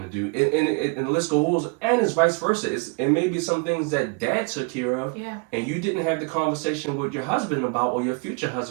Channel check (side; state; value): left; quieter; 33.0 dB